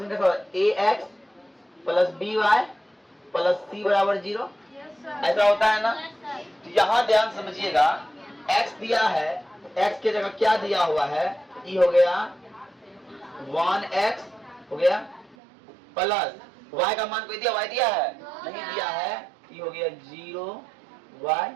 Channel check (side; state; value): left; drops out; at 15.4 s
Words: ax + by + c बराबर 0 ऐसा होता है ना। तो यहाँ ध्यान समझिएगा, x दिया है, x की जगह क्या दिया हुआ है, e हो गया 1x हो गया, प्लस y का मान कोई दिया, y दिया है नहीं दिया है, e हो गया 0y